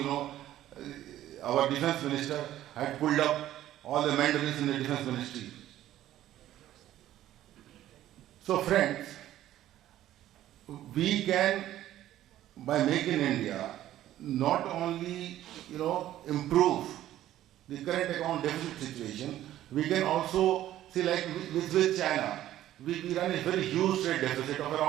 our defense minister had pulled up all the mandarins in the defense ministry. So friends, we can, by Make in India, not only improve the current account deficit situation, we can also see, like with China, we run a very huge trade deficit of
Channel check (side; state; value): left; quieter; 13.1 dB